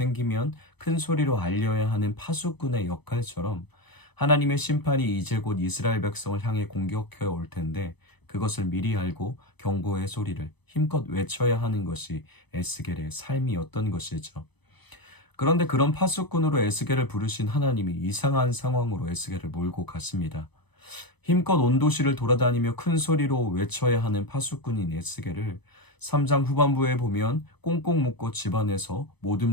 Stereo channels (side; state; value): right; late; 0.99 ms